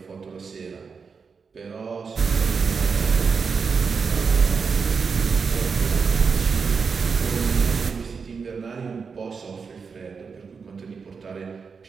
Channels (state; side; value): quieter; left; 5.5 dB